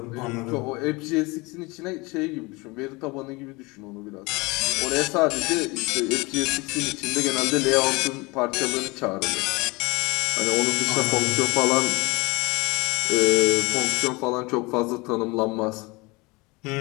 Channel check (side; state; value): right; quieter; 24.9 dB